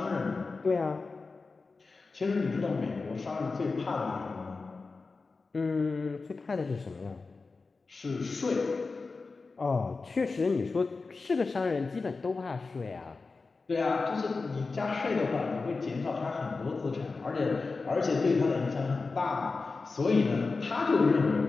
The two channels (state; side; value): quieter; right; 4.1 dB